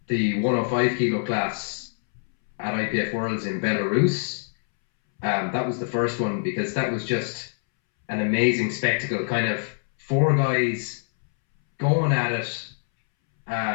105 kilo class at IPF Worlds in Belarus. That was the first one because that was just an amazing spectacle. Kind of four guys going at it,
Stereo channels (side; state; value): right; silent; 62 dB below the other